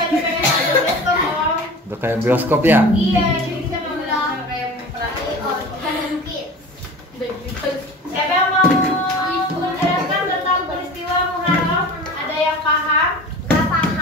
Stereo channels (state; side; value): normal; both; correlation 0.37